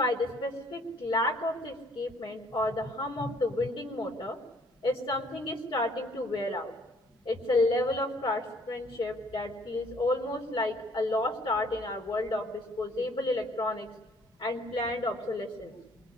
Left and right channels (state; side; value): normal; both; correlation 0.60